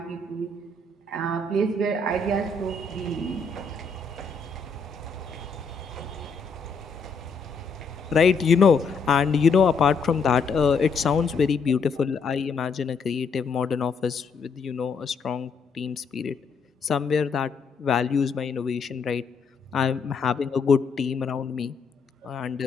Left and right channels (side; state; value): right; quieter; 4.7 dB